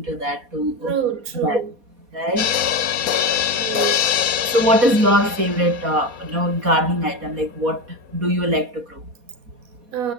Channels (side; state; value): left; late; 4.2 ms